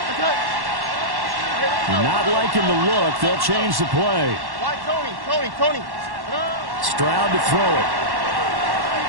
Not liking the look. They'll change the play. Tony. Stroud to throw it.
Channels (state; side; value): late; left; 1.1 ms